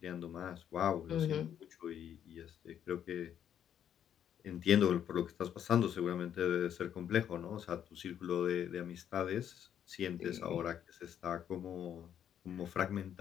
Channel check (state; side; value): quieter; right; 9.5 dB